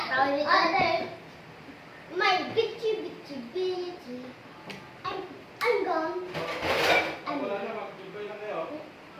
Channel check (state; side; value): identical; both; correlation 1.00